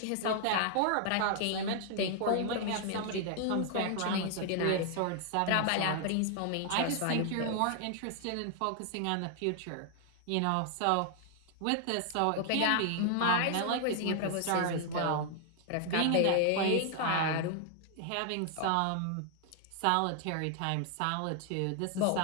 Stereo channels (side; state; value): both; different; correlation 0.00